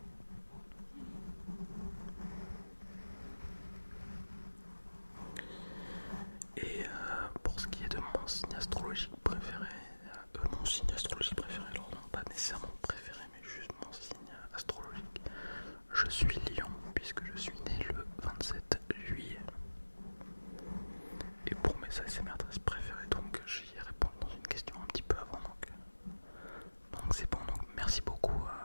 Et pour ce qui est de mon signe astrologique préféré, alors non, pas nécessairement préféré, mais juste mon signe astrologique, je suis Lion, puisque je suis né le 27 juillet. Et pour mes ASMR préférés, donc j'y ai répondu dans une question un petit peu avant, donc c'est bon, donc merci beaucoup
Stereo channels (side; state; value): both; inverted; correlation -1.00